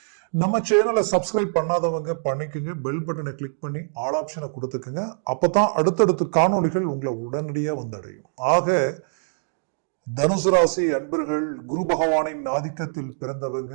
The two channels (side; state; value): left; silent; digital silence